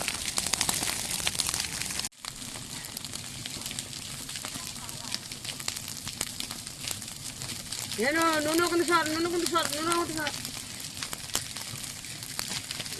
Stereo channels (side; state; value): both; identical; correlation 1.00